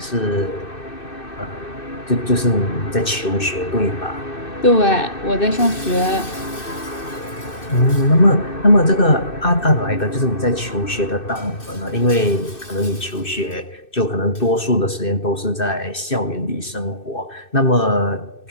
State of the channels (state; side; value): late; right; 2.6 ms